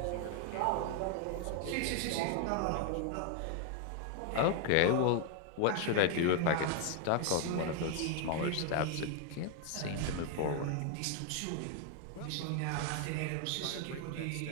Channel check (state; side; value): different; both; correlation 0.00